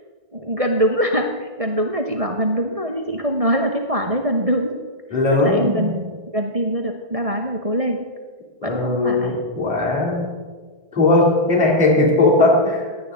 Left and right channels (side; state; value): left; late; 1.6 ms